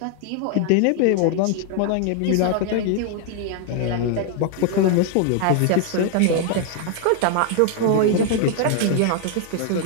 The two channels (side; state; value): both; different; correlation 0.00